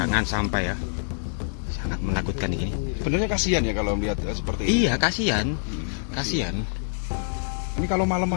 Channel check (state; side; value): silent; right; digital silence